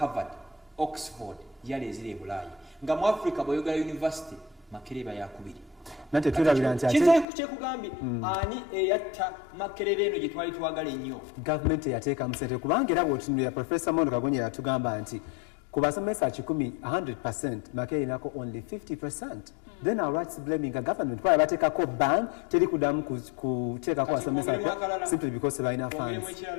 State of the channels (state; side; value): drops out; right; at 7.2 s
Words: Oxford yali eziri e Bulaayi nga mu Africa bw'oyogera university Makerere bayakubiri nate tulabira nti kyekugambye ani eyatta Makerere eno gye twali twagala ennyo gavumenti yateeka mu ssente kubanga era bw'otunulira Professor Mondo Kagonye yatugamba nti ku basomesa 100% Makerere inako only 50%. Then our rights blaming a government kwa bateekako ban teri kudamu kuteekako basomesa simply because balina funds